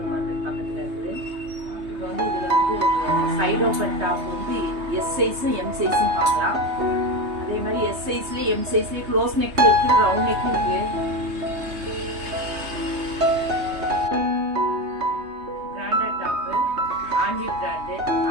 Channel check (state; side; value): late; left; 3.2 ms